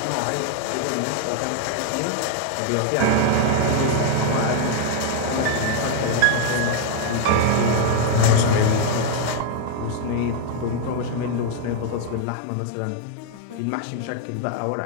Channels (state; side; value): different; both; correlation 0.00